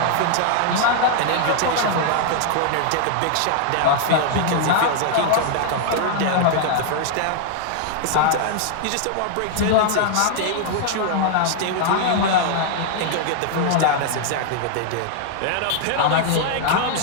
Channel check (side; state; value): both; different; correlation 0.00